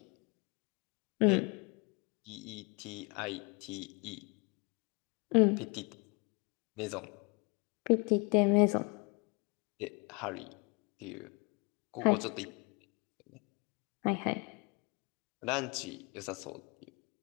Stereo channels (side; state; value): right; quieter; 31.0 dB